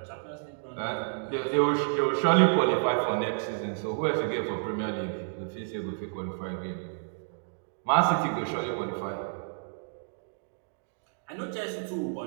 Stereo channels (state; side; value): silent; left; digital silence